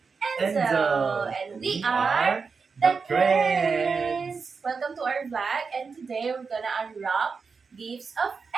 Enzo. Enzo. And we are the Creds. Welcome to our vlog, and today we're gonna unwrap gifts of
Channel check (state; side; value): quieter; left; 5.1 dB